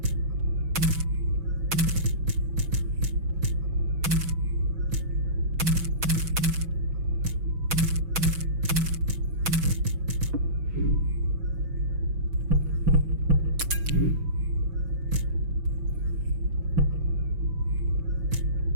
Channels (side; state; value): left; late; 6.1 ms